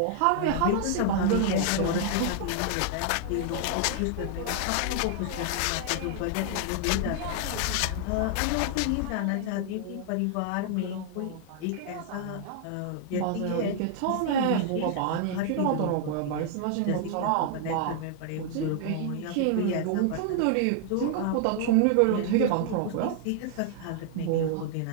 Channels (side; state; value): both; different; correlation 0.00